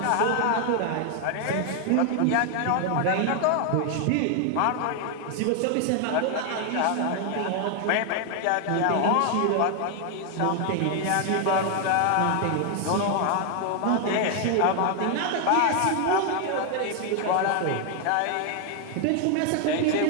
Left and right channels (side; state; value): both; different; correlation 0.00